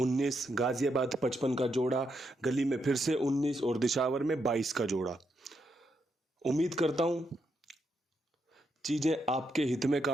गाजियाबाद 55 का जोड़ा, गली में फिर से 19 और दिशावर में 22 का जोड़ा। उम्मीद करता हूं चीज़ें आपके हित में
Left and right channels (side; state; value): both; normal; correlation 0.80